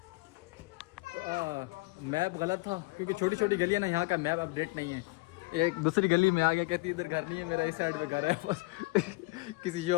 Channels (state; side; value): quieter; right; 24.7 dB